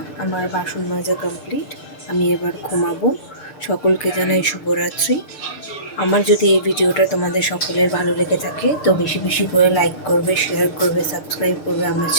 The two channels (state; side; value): late; right; 6.7 ms